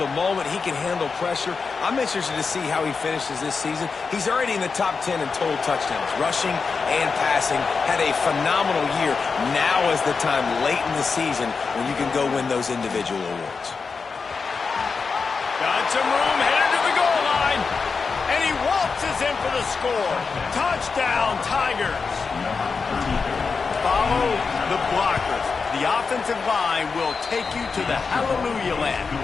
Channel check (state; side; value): quieter; right; 5.0 dB